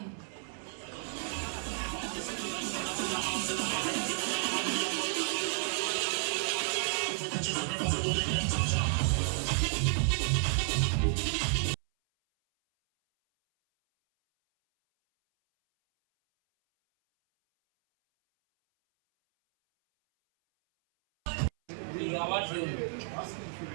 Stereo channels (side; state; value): left; silent; 57 dB below the other